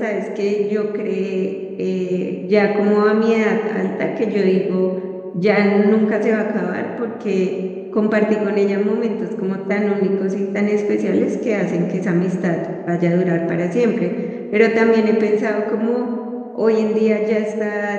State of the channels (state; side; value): identical; both; correlation 1.00